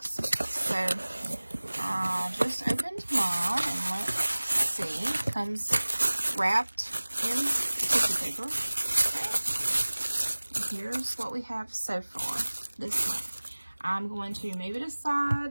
So I just opened mine, and let's see, it comes wrapped in tissue paper. Okay. Here's what we have so far this month. I'm going to move it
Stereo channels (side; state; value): both; inverted; correlation -1.00